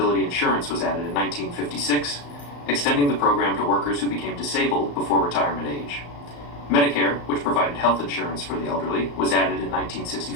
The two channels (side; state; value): right; late; 35 ms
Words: insurance was added in 1956, extending the program to workers who became disabled before retirement age. Medicare, which provided health insurance for the elderly, was added in